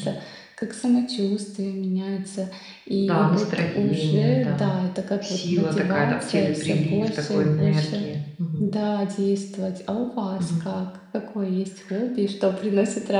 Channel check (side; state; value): both; identical; correlation 1.00